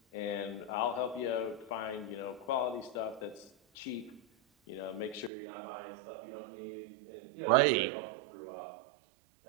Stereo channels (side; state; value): left; drops out; at 5.3 s